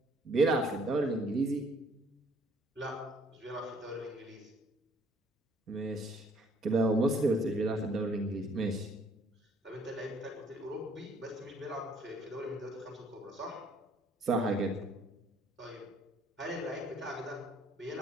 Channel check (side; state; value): both; normal; correlation 0.62